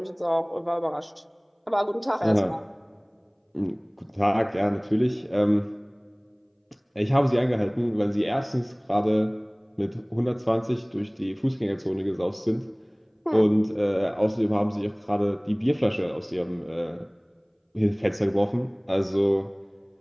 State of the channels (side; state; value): both; identical; correlation 1.00